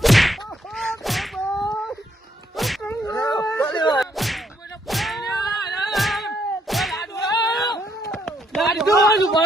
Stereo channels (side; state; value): both; normal; correlation 0.72